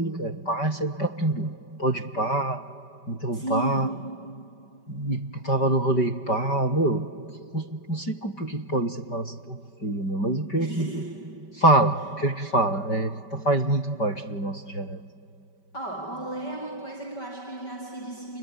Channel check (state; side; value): late; right; 5.2 ms